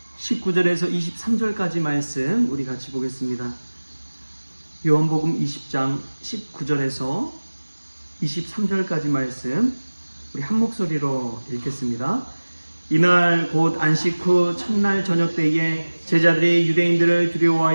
19절에서 23절까지 말씀 우리 같이 보겠습니다. 요한복음 20장 19절에서 23절까지 말씀 우리 한 목소리로 읽겠습니다. 이날 곧 안식 후 첫날 저녁 때에 제자들이 유대인들을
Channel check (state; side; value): inverted; both; correlation -1.00